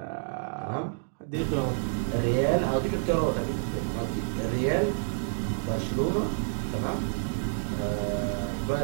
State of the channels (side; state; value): left; silent; digital silence